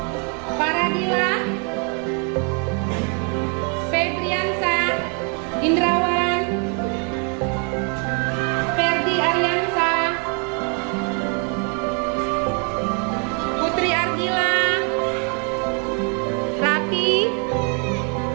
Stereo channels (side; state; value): left; quieter; 38.0 dB